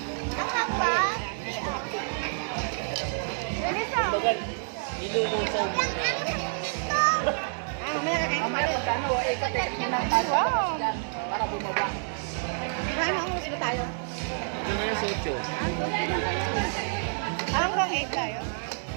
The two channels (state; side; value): silent; left; 59 dB below the other